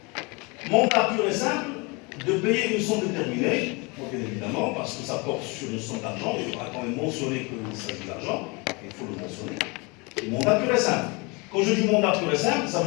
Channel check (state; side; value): quieter; right; 28.1 dB